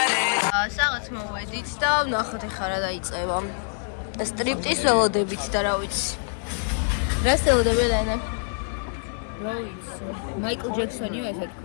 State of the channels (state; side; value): silent; right; digital silence